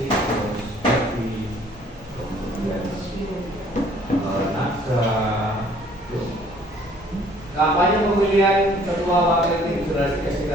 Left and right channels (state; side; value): normal; both; correlation 0.58